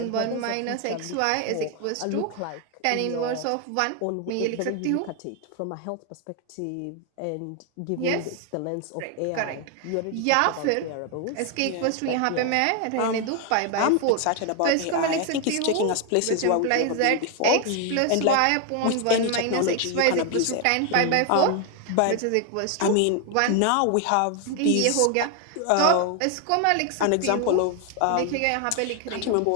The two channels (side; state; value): both; different; correlation 0.01